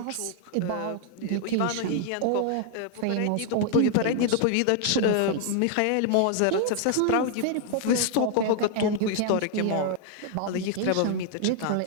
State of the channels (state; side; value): different; both; correlation 0.00